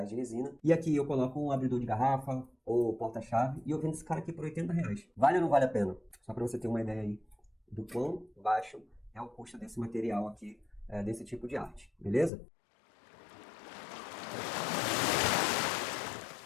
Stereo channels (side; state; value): right; drops out; at 12.3 s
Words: de resina. E aqui eu coloco um abridor de garrafa ou porta-chave e eu vendo esse cara aqui por R$ 80. Vale ou não vale a pena? Só para você ter uma ideia aí do quão baixo é o custo desse material aqui, desse tipo de arte, beleza?